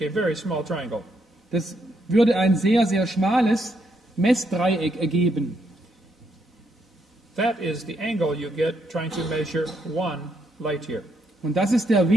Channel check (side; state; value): both; normal; correlation 0.76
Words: a very small triangle. Das würde ein sehr, sehr schmales Messdreieck ergeben. That is the angle you get trying to measure 1 light year. Und das ist der